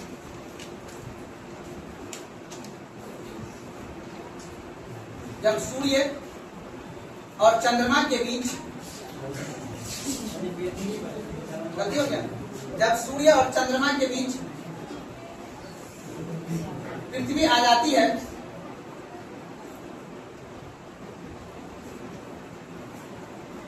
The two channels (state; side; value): identical; both; correlation 1.00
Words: सूर्य और चंद्रमा के बीच, गलती हो गया, जब सूर्य और चंद्रमा के बीच पृथ्वी आ जाती है,